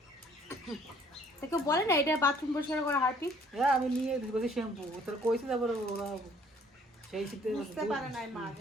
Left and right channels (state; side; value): normal; both; correlation 0.58